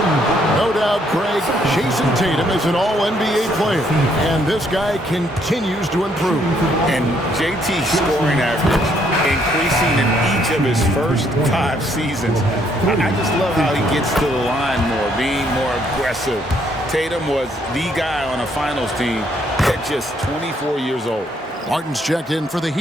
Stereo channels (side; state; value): both; normal; correlation 0.69